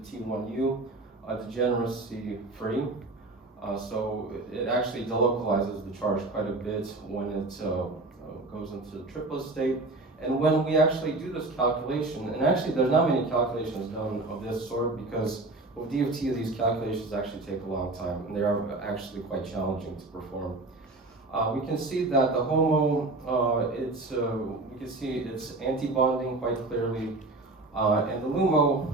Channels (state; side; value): quieter; left; 3.1 dB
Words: T1U, degeneracy free. So it actually delocalizes the charge quite a bit when it goes into the triplet state. And when we actually do this calculation, and actually there's not many calculations done of this sort because with DFT these calculations actually take a long time and they are actually quite challenging to perform. We can see that the HOMO, we can see it's anti-bonding quite clearly, and the LUMO